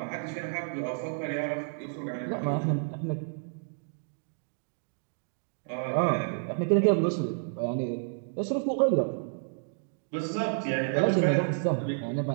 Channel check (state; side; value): silent; left; digital silence